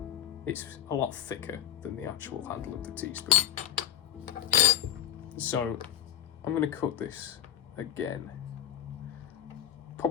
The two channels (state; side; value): quieter; right; 10.9 dB